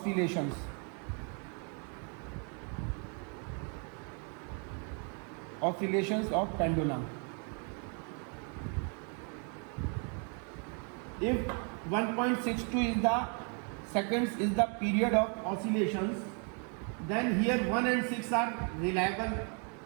of pendulum. If 1.62 is the seconds is the period of oscillations, then here 1 and 6 are reliable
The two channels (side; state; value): left; quieter; 39.2 dB